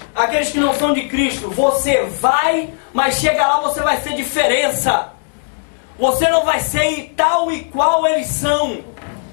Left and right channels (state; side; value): silent; right; digital silence